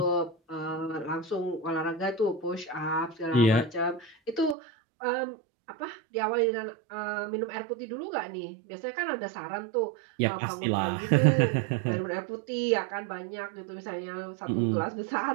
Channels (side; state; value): left; drops out; at 4.5 s